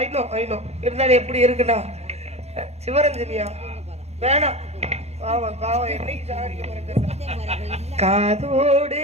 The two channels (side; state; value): left; late; 0.31 ms